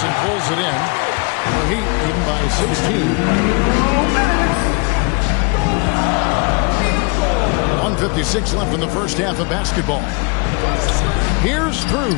pulls it in. The Heat leading by 16. 1:56 left in the first half of basketball. Here's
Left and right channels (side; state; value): right; quieter; 31.5 dB